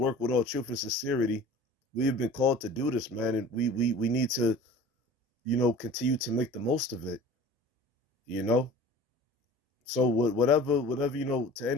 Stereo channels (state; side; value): normal; both; correlation 0.42